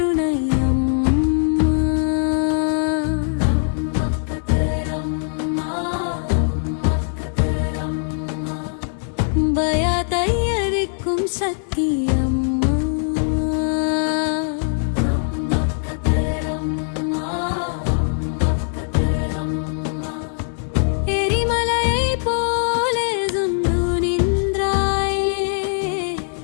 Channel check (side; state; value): right; silent; digital silence